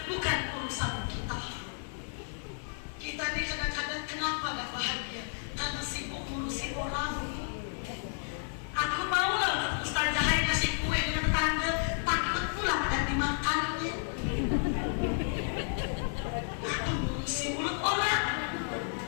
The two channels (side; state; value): right; silent; 56 dB below the other